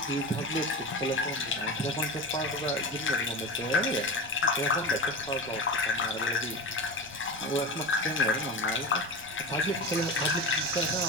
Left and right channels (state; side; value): noise; right; rumble, 23 dB below the sound